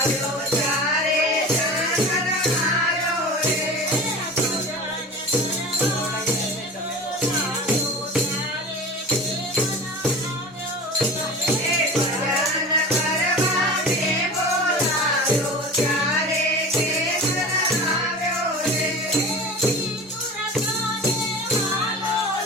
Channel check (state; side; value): normal; both; correlation 0.34